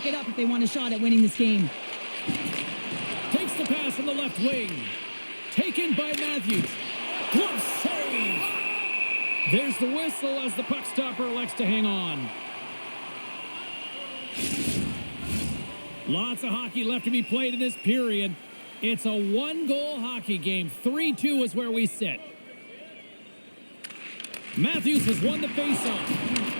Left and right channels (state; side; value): inverted; both; correlation -1.00